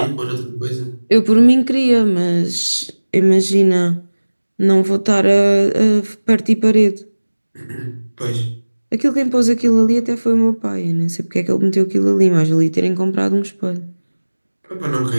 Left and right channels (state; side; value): inverted; both; correlation -1.00